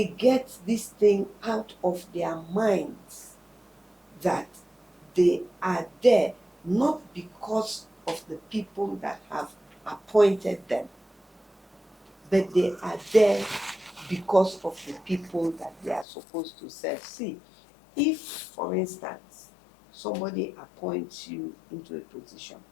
get this thing out of their minds that they are there not because of the people that have appointed them, but they are there because of the people that they are supposed to serve. See, if, for instance, somebody appoints you into a position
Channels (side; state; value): right; drops out; at 16.1 s